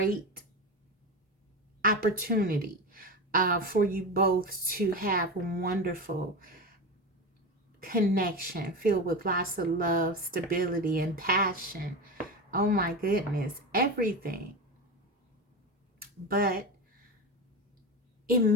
opportunity for you both to have a wonderful connection filled with lots of love, stability, and passion. Oh my goodness, everything. But it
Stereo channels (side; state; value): both; normal; correlation 0.22